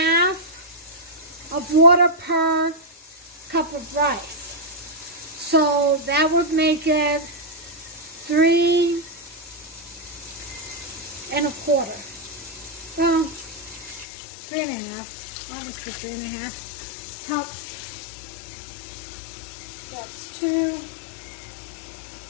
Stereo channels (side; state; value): right; drops out; at 14.1 s